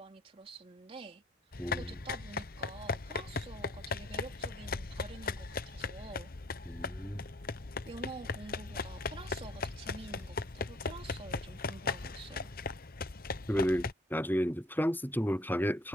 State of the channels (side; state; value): both; normal; correlation 0.59